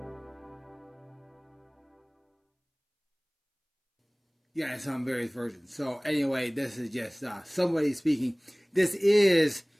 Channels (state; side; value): identical; both; correlation 1.00